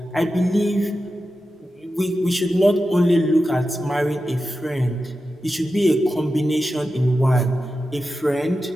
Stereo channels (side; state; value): both; normal; correlation 0.91